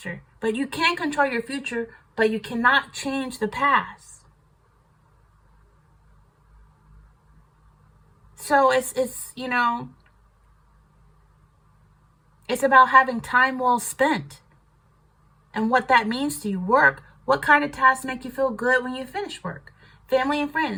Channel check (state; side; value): identical; both; correlation 1.00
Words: But you can control your future, but you cannot change the past. So it's about having time well spent. And what that means to you. Work. What kind of tasks make you feel good when you finish work? Family and